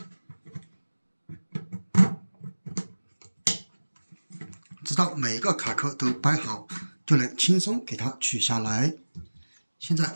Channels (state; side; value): inverted; both; correlation -1.00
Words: 直到每一個卡扣都掰好，就能輕鬆給它取下來。現在